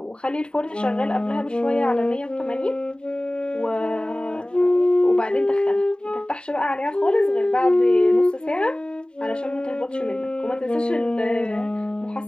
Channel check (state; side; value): late; right; 0.050 ms